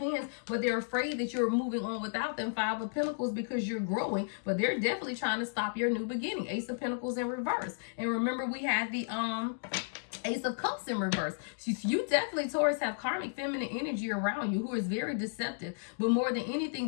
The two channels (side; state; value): right; silent; digital silence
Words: but they're afraid that you're moving on without them. Five of Pentacles, because you're growing, but they're definitely trying to stop your new beginning. Ace of Pentacles in reverse. And remember, we had the Ace of Cups in reverse. So you definitely, Taurus, have karmic feminine energy around you who is very deceptive. But more than